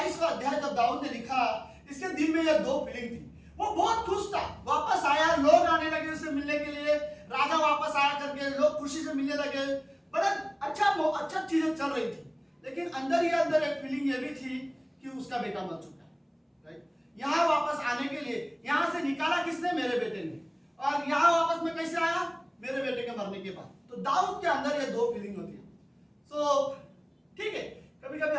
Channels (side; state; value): both; identical; correlation 1.00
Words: अध्याय जब दाऊद ने लिखा, इसके दिल में ये दो फीलिंग थी। वो बहुत खुश था, वापस आया, लोग आने लगे उसे मिलने के लिए, राजा वापस आया करके लोग खुशी से मिलने लगे, बड़ा अच्छा चीजें चल रही थी। लेकिन अंदर ही अंदर एक फीलिंग ये भी थी कि उसका बेटा मर चुका है, राइट? यहाँ वापस आने के लिए, यहाँ से निकाला किसने? मेरे बेटे ने। और यहाँ वापस में कैसे आया? मेरे बेटे के मरने के बाद। तो दाऊद के अंदर ये दो फीलिंग होती है। सो ठीक है, कभी कभी